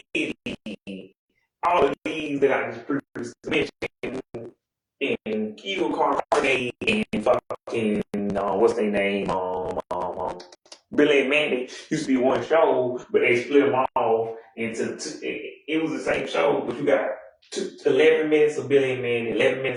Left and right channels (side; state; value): both; identical; correlation 1.00